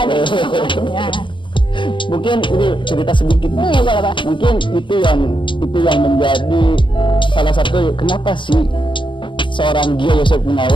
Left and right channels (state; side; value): late; right; 0.24 ms